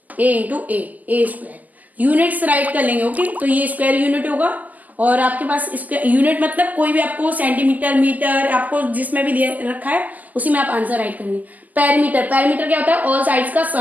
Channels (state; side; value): late; left; 0.080 ms